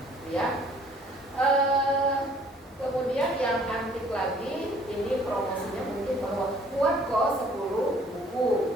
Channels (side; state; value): both; normal; correlation 0.57